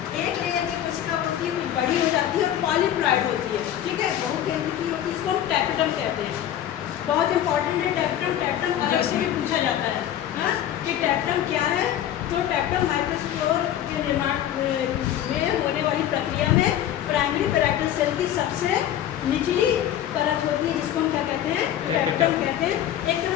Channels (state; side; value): quieter; right; 11.3 dB